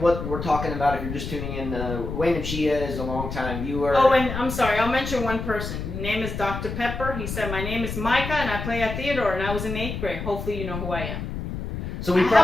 what we're talking about, if you're just tuning in, Wayne and Chia is a long-time viewer. Oh, and I'm sorry, I'll mention one person. His name is Dr. Pepper. He said, my name is Micah, and I play at Theodore, and I was in 8th grade. Hopefully you know who I am. So I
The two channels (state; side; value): noise; left; rumble, 6 dB below the sound